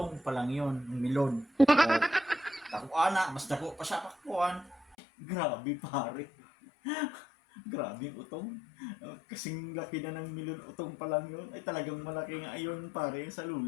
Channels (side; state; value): right; drops out; at 5.0 s